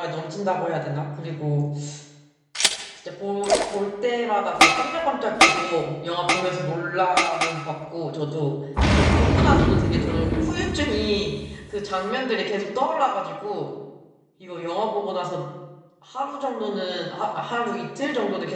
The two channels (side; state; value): both; identical; correlation 1.00